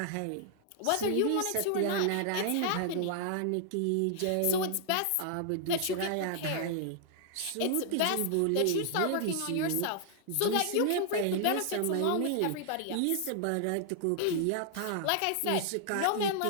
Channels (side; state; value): both; different; correlation -0.01